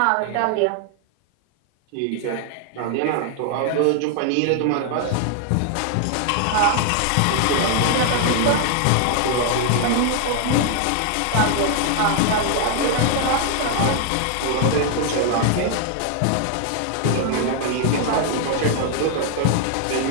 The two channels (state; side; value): different; both; correlation 0.00